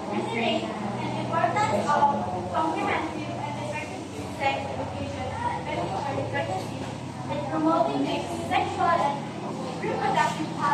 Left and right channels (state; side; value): identical; both; correlation 1.00